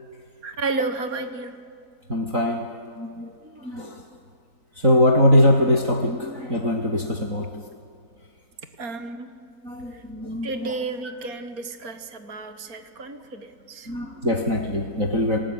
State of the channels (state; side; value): late; left; 4.3 ms